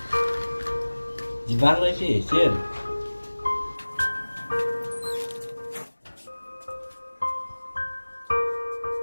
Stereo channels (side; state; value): both; inverted; correlation -1.00